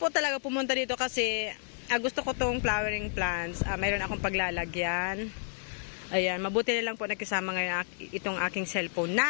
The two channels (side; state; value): right; silent; 57 dB below the other